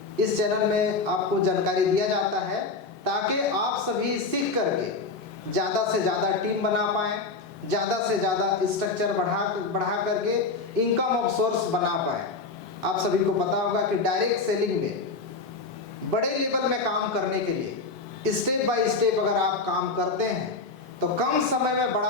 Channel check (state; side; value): quieter; right; 4.0 dB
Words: इस चैनल में आपको जानकारी दिया जाता है, ताकि आप सभी सीख करके ज़्यादा से ज़्यादा टीम बना पाएँ, ज़्यादा से ज़्यादा स्ट्रक्चर बढ़ा करके इनकम ऑफ सोर्स बना पाएँ। आप सभी को पता होगा कि डायरेक्ट सेलिंग में बड़े लेवल में काम करने के लिए स्टेप बाय स्टेप अगर आप काम करते हैं तो कम समय में